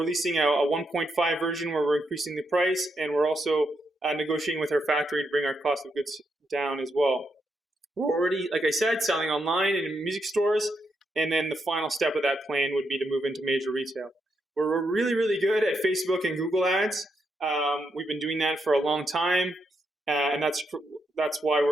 a 1.5 version where we're increasing the price, and we're also negotiating with our factory to bring our cost of goods down as well. We're already, like I said, selling online and in music stores, and then the final step of that plan would be to move into major retail. We're really, really good at Facebook and Google ads. We've been doing that for a long time, and that's why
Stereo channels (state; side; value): normal; both; correlation 0.81